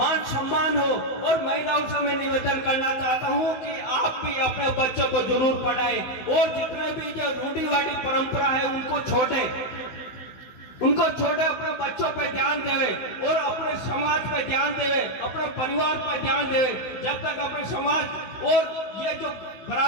सम्मान हो। और महिलाओं से मैं निवेदन करना चाहता हूं कि आप भी अपने बच्चों को जरूर पढ़ाएं और जितने भी जो रूढ़िवादी परंपरा है उनको छोड़े, अपने बच्चों पर ध्यान देवे और अपने समाज पर ध्यान देवे, अपने परिवार पर ध्यान देवे। जब तक अपने समाज और ये जो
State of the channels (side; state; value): right; late; 15 ms